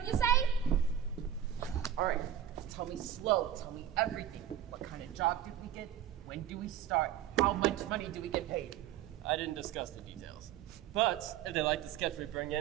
you say? All right, tell me slow, tell me everything. What kind of job did we get? When do we start? How much money do we get paid? I didn't discuss the details. But if they like the sketch we bring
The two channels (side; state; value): left; quieter; 10.3 dB